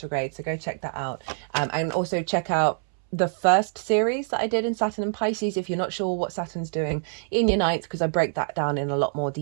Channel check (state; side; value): silent; left; 61 dB below the other